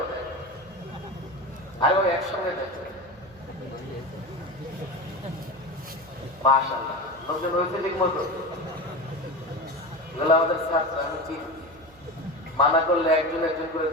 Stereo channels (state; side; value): noise; right; hum, 25 dB below the sound